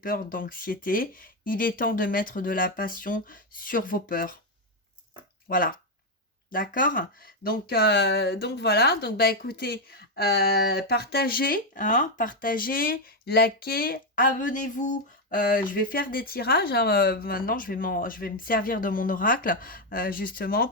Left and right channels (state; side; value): normal; both; correlation 0.05